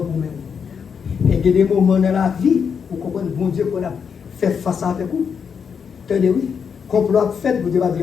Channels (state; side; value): quieter; right; 6.6 dB